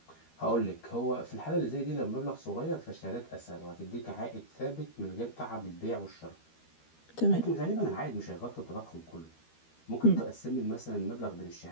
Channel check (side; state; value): right; late; 13 ms